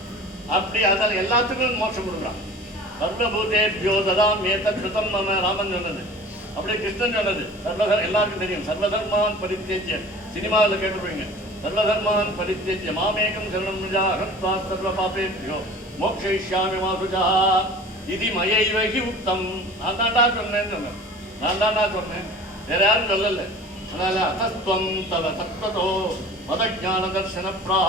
அப்படி அதால் எல்லாத்துக்கும் மோட்சம் கொடுக்குறான். சர்வபூதேபியோ ததாமே தத்ம் மம ராமன் சொன்னது. அப்படியே கிருஷ்ணன் சொன்னது. எல்லாருக்கும் தெரியும், சர்வதர்மான் பரித்தேஜ்ய. சினிமாவில் கேட்டுருவீங்க, சர்வதர்மான் பரித்தேஜ்ய மாமேகம் சரணம் நிஜா ஹத்வா சர்வ பாபேபியோ மோக்ஷயிஷ்யாமி மா சுஜா இது மயைவகி உத்தம். நான் தாண்டா சொன்னேன்னு சொன்னேன், நான் தாண்டா சொன்னேன், வேற யாரும் சொல்லல. அதனால அத்தஸ்துவம் தவ தத்வதோ மதஞான தர்சன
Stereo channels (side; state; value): both; normal; correlation 0.42